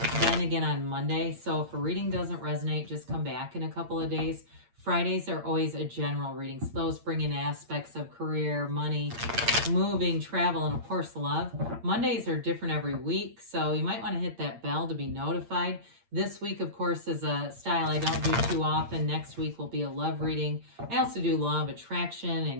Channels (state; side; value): late; left; 8.7 ms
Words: then again on Monday. So if a reading doesn't resonate, just come back in a couple of days. Fridays are always a general reading. So those bring in aspects of career, money, moving, travel, and of course love. Mondays are different every week, so you might want to hit that bell to be notified. This week, of course, is a style I don't do too often. Next week will be a love reading. I also do law of attraction